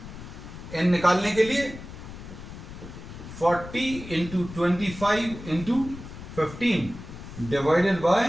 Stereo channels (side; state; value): left; noise; rumble, 13 dB below the sound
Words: n निकालने के लिए 40 into 25 into 15 divided